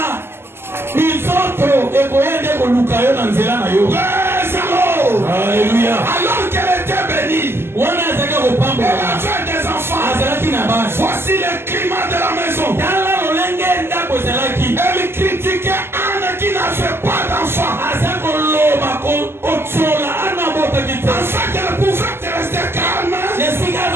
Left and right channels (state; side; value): late; left; 0.12 ms